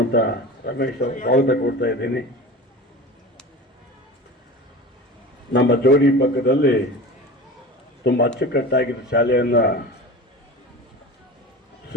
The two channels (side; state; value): both; normal; correlation 0.34